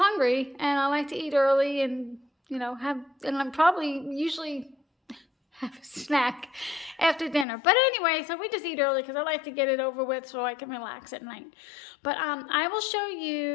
and I like to eat early, and you know, and I'm probably usually have a snack after dinner. But anyway, so we just eat early because I like to get it over with so I can relax at night. But I will show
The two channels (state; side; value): drops out; right; at 7.5 s